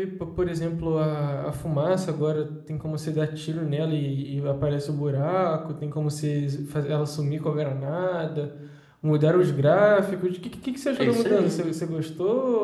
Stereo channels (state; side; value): identical; both; correlation 1.00